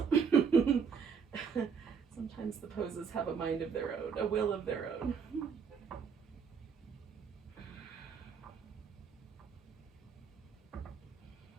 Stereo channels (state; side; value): quieter; left; 6.3 dB